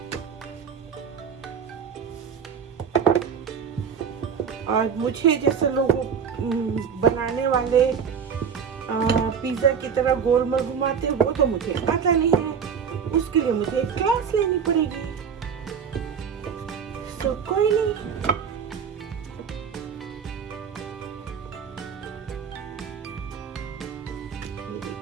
और मुझे जैसे लोग बनाने वाले पिज्जा की तरह गोल मोल घुमाते, वो तो मुझे आता नहीं है। उसके लिए मुझे एक क्लास लेनी पड़ेगी। तो कोई नहीं, ये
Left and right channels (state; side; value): quieter; left; 6.9 dB